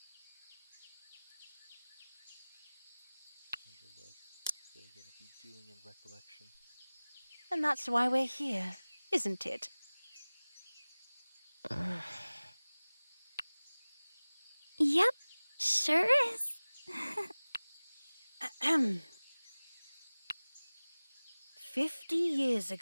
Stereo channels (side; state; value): both; inverted; correlation -0.99